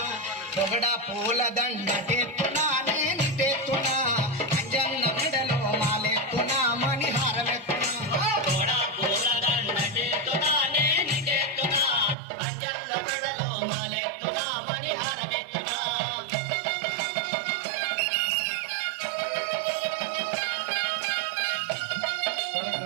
పొగడ పూల దండ తెత్తునా నేను తెత్తునా అంజన్న మెడలో మాలెత్తునా మణిహారమెత్తునా తోడా పూల దండ చేతునా నేను చేతునా అంజన్న మెడలో మాలెత్తునా మణిహారమెత్తునా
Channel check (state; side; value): drops out; left; at 12.2 s